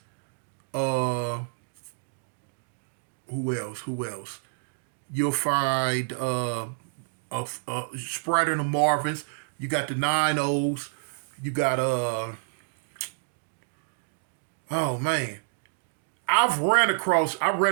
Who else? You'll find Sprite and the Marvins. You got the 9-0s. You got oh man. I ran across,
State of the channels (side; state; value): left; silent; digital silence